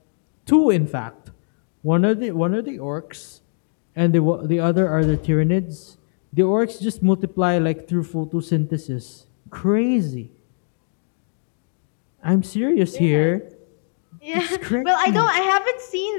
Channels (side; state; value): right; silent; 64 dB below the other